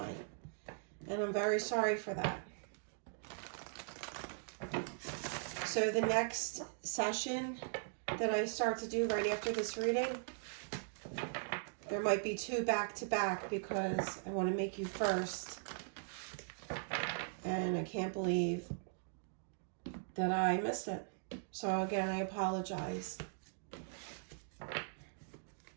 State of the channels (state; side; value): silent; left; digital silence